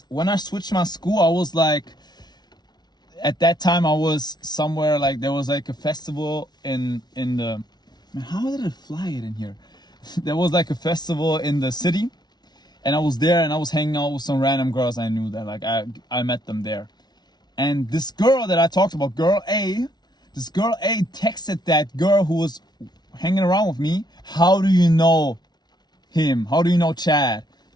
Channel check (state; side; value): late; right; 0.20 ms